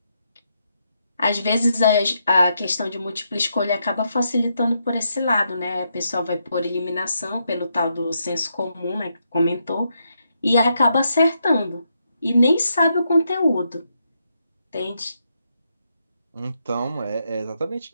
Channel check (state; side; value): inverted; both; correlation -0.80